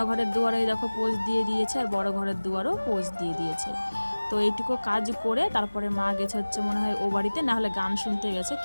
দুয়ারে দেখো পোজ দিয়ে দিয়েছে, আর বড় ঘরের দুয়ারও পোজ দিয়ে দিয়েছে। তো এইটুকু কাজ করে তারপরে মা গেছে হচ্ছে মনে হয় ও বাড়িতে, না হলে গান শুনতে গেছে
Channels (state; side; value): inverted; both; correlation -1.00